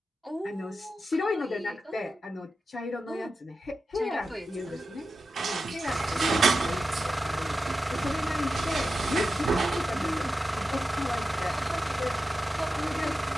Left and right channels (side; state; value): both; normal; correlation 0.91